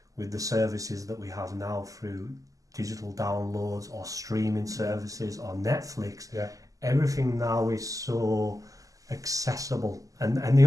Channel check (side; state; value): left; late; 0.17 ms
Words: with the services that we have now through digital downloads or streaming services or Netflix, everything now is so accessible. And the